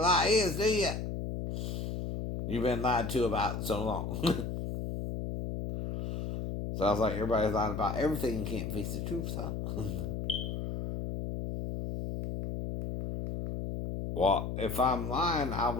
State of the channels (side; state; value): left; noise; hum, 4 dB below the sound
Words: lie is, do you? You've been lied to about so long. Sounds like everybody's lying about everything and can't face the truth, huh? Well, if I'm lying, I